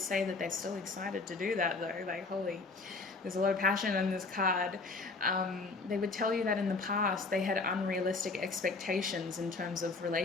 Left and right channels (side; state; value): right; quieter; 3.8 dB